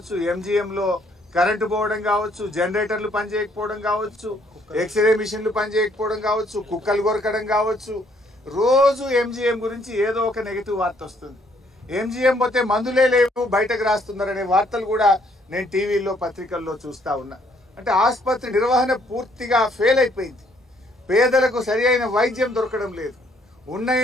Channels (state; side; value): normal; both; correlation 0.66